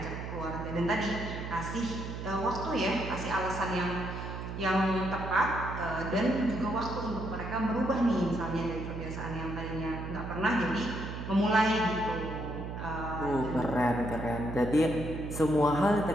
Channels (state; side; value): noise; right; hum, 7 dB below the sound